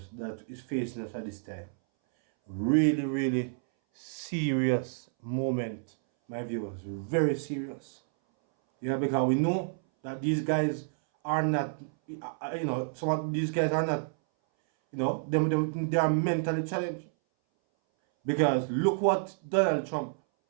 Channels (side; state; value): left; silent; 58 dB below the other